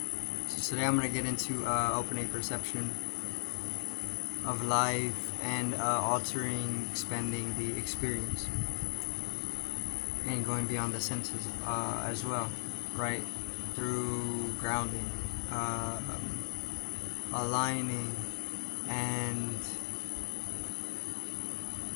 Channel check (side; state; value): right; silent; 54 dB below the other